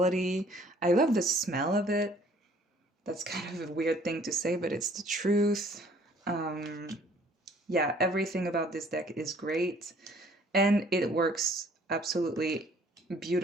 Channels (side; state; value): both; normal; correlation 0.58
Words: I love the smell of it. That's kind of a weird thing to say, but it's the truth. Yeah, everything about this deck is great, and it works absolutely